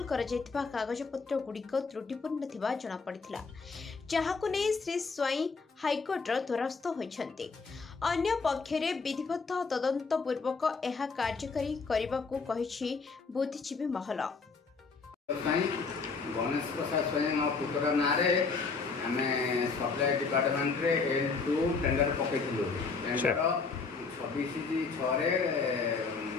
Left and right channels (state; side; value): quieter; right; 4.6 dB